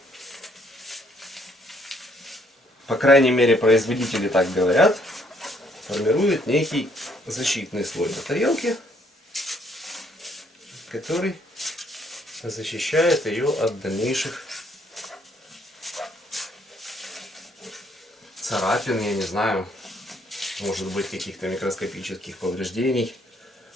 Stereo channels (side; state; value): both; normal; correlation 0.68